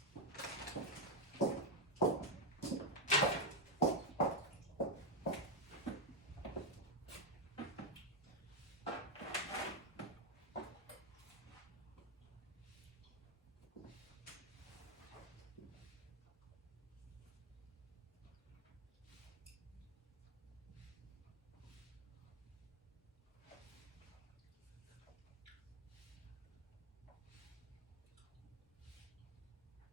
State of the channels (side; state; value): both; normal; correlation 0.03